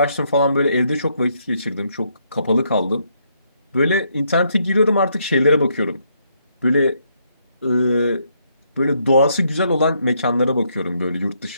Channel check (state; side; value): inverted; both; correlation -0.74